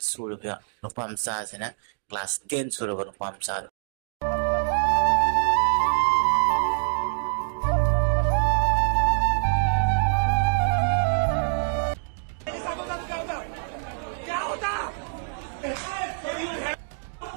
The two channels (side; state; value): left; silent; digital silence